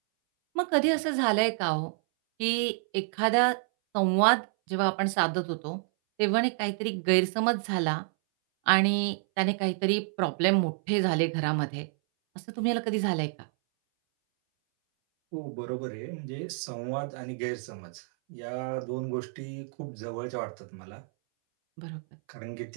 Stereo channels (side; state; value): left; silent; 59 dB below the other